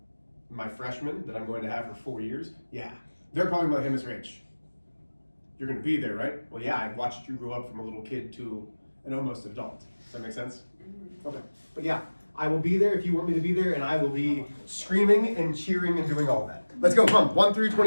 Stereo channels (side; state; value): both; inverted; correlation -1.00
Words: my freshmen that I'm going to have for 4 years, yeah, they're probably about, hey, Miss Rich, you're going to be there, right? Well, yeah, I watched you grow up from a little kid to an almost adult. Does that make sense? Okay. But yeah, I will be there if you want me to be there, and I will be screaming and cheering and doing all that. Let's go, come on, 1 through